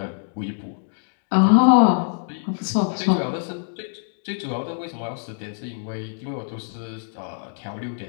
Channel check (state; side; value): silent; right; digital silence